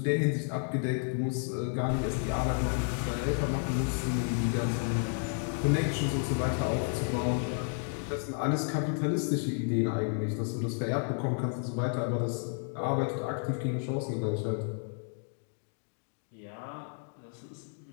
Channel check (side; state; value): right; silent; 57 dB below the other